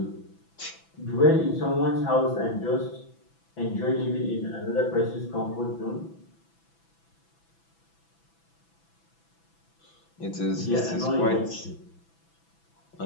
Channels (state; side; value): late; right; 6.0 ms